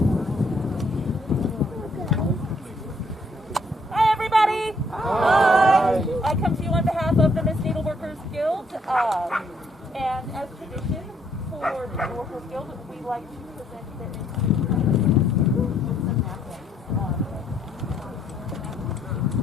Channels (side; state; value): both; normal; correlation 0.69